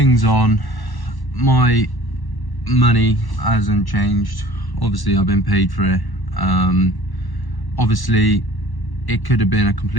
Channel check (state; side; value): late; right; 1.1 ms